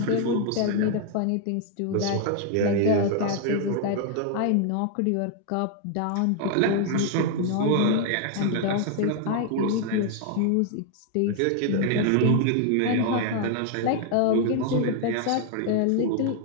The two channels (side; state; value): both; different; correlation 0.00